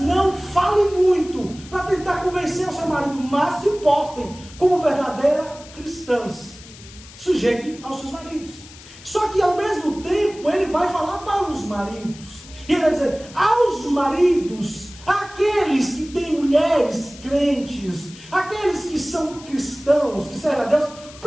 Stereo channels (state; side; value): noise; left; hiss, 19 dB below the sound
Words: não falem muito para tentar convencer o seu marido, mas se portem como verdadeiras cristãs. Sujeitem aos seus maridos. Só que ao mesmo tempo ele vai falar para os maridos. E ele vai dizer, aos maridos, aqueles que têm mulheres crentes, aqueles que são cristãos, que servem a Deus,